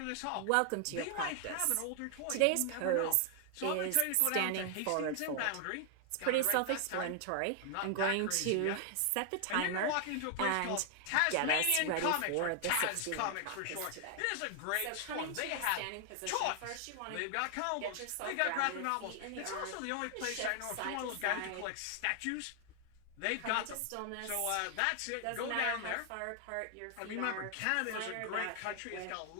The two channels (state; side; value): different; both; correlation 0.00